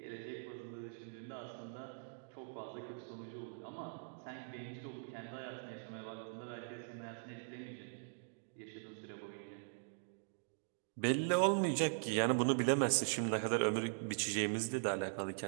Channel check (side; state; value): left; silent; digital silence